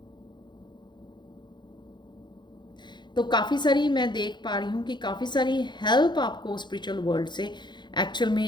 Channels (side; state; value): right; late; 0.22 ms